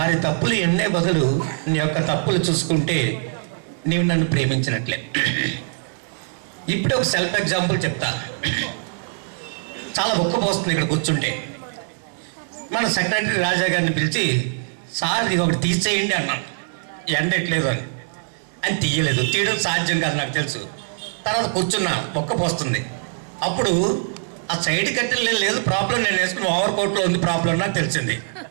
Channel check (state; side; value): silent; left; 64 dB below the other